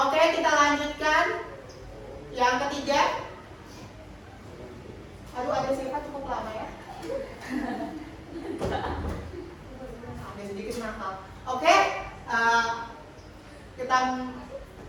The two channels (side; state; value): both; identical; correlation 1.00